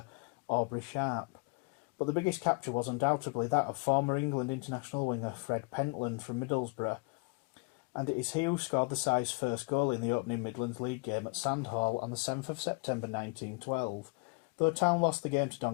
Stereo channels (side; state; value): right; quieter; 31.7 dB